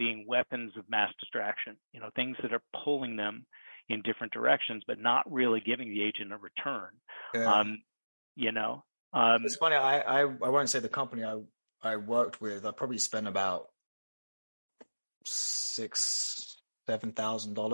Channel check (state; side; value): inverted; both; correlation -1.00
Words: weapons of mass distraction, things that are pulling them in different directions, but not really giving the agent a return. It's funny. I won't say the company I worked with. I probably spent about